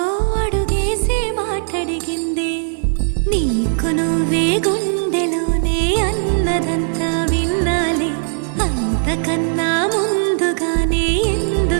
అడుగేసి మాటడిగిందే. నీకు నువ్వే గుండెలోనే అన్నదంతా విన్నాలే, అంతకన్నా ముందుగానే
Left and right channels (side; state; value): left; silent; digital silence